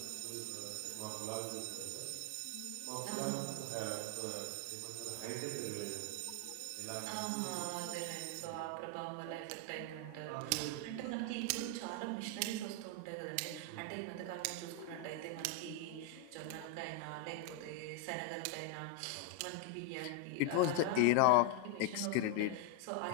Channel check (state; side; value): different; both; correlation 0.01